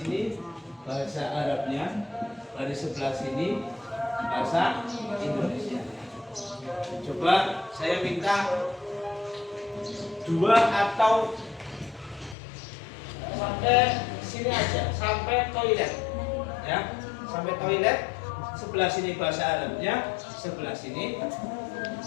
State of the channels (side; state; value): right; drops out; at 12.4 s